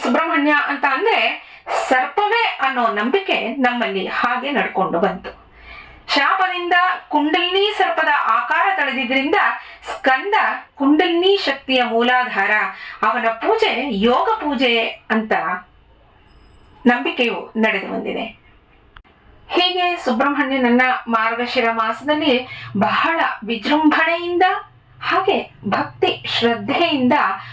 ಸುಬ್ರಹ್ಮಣ್ಯ ಅಂತ ಅಂದ್ರೆ ಸರ್ಪವೇ ಅನ್ನೋ ನಂಬಿಕೆ ನಮ್ಮಲ್ಲಿ ಹಾಗೆ ನಡ್ಕೊಂಡು ಬಂತು. ಶಾಪದಿಂದ ಕುಂಡಲಿನಿ ಸರ್ಪದ ಆಕಾರ ತಳೆದಿದ್ರಿಂದ ಸ್ಕಂದ ಕುಂಡಲಿನಿ ಶಕ್ತಿಯ ಮೂಲಾಧಾರ. ಅವನ ಪೂಜೆ ಯೋಗ ಪೂಜೆ ಅಂತ ನಂಬಿಕೆಯು ನಡೆದು ಬಂದಿದೆ. ಹೀಗೆ ಸುಬ್ರಹ್ಮಣ್ಯನನ್ನ ಮಾರ್ಗಶಿರ ಮಾಸದಲ್ಲಿ ಬಹಳ ವಿಜೃಂಭಣೆಯಿಂದ ಹಾಗೆ ಭಕ್ತಿ ಶ್ರದ್ಧೆಯಿಂದ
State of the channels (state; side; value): identical; both; correlation 1.00